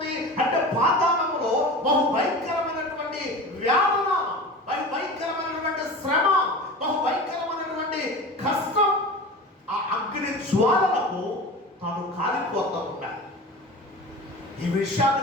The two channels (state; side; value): normal; both; correlation 0.33